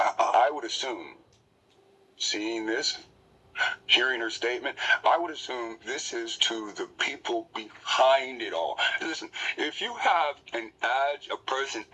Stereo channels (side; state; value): both; identical; correlation 1.00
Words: would assume, seeing this, hearing her statement, I would assume this is to the people behind it all. Listen, if you have a person